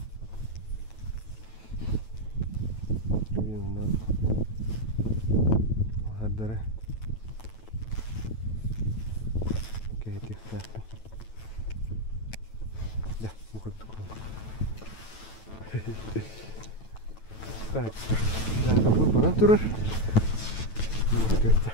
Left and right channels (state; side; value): late; right; 9.1 ms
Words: Так, да, какой банан турер? Вот это.